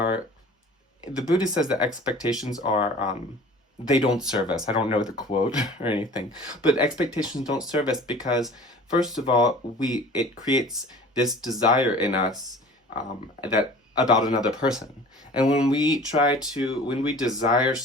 the Buddha says that expectations are they don't serve us. I don't know the quote or anything, but expectations don't serve us because, first of all, it creates this desire in us that about another person. And when we desire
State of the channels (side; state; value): both; normal; correlation 0.43